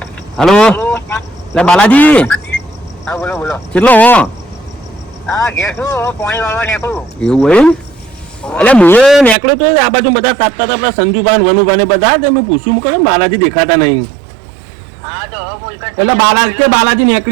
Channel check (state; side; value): drops out; left; at 9.3 s